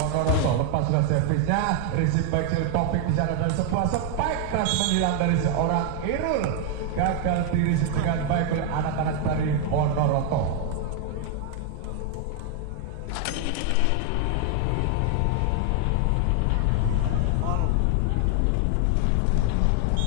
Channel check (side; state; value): both; different; correlation 0.00